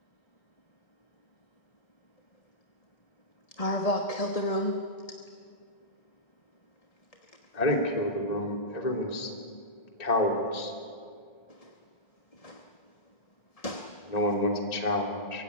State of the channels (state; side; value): late; right; 1.9 ms